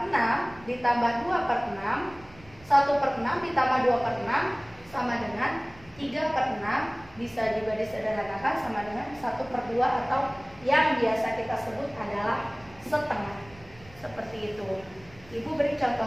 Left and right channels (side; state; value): right; noise; rumble, 24 dB below the sound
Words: 6 ditambah 2 per 6, 1 per 6 ditambah 2 per 6 sama dengan 3 per 6. Bisa juga disederhanakan sama dengan 1 per 2 atau yang biasa kita sebut adalah setengah. Seperti itu. Ibu beri